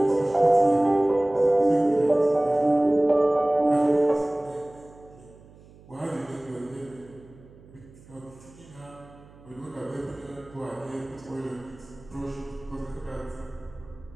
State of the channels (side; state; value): right; noise; hum, 23 dB below the sound